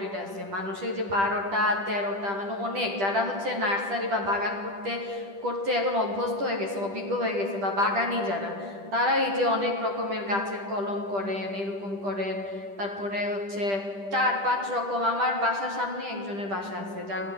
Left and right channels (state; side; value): late; left; 10 ms